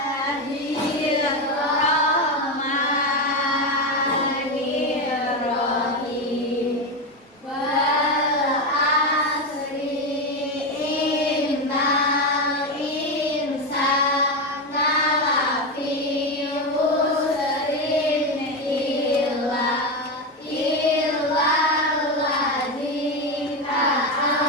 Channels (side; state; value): both; normal; correlation 0.14